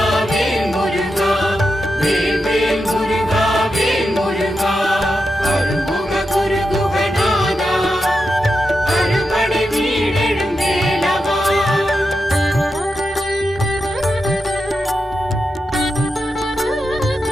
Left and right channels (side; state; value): both; normal; correlation 0.88